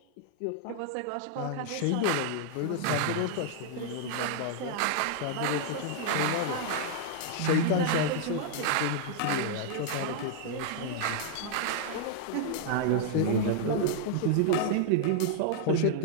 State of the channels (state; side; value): different; both; correlation -0.01